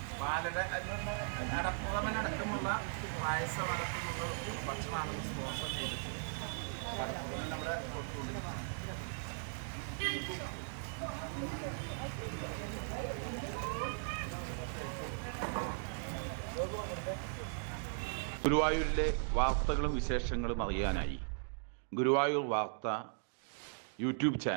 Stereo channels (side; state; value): left; silent; digital silence